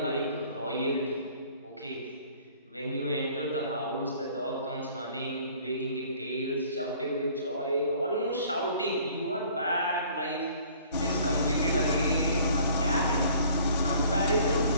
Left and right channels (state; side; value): inverted; both; correlation -0.54